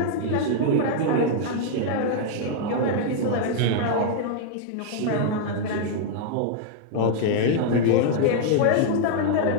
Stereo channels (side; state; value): both; different; correlation 0.00